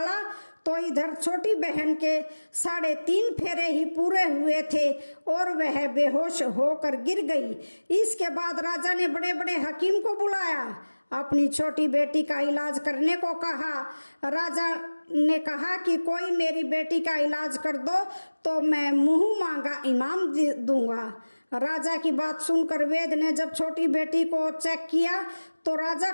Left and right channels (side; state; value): both; inverted; correlation -1.00